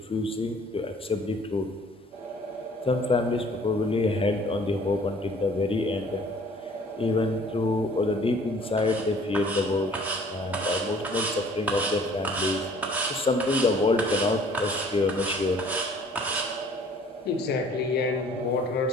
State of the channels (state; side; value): normal; both; correlation 0.54